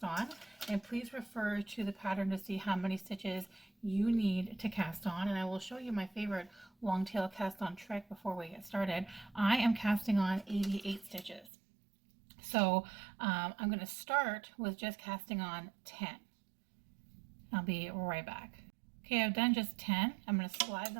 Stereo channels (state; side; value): drops out; left; at 11.5 s